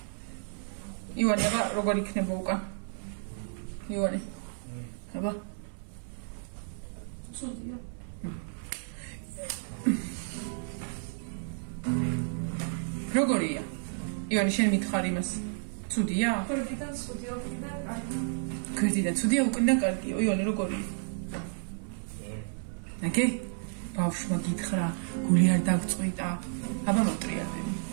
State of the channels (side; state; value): left; silent; 57 dB below the other